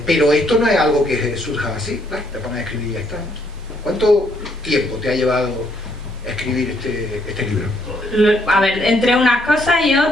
Pero esto no es algo que surja así, ¿no? Te pones a escribir y ya está, ¿no? ¿Cuánto tiempo te ha llevado escribir este libro? A ver, entre unas cosas y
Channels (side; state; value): both; normal; correlation 0.70